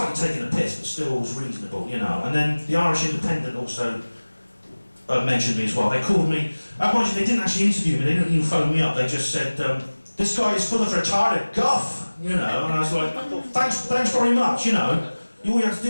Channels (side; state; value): both; inverted; correlation -1.00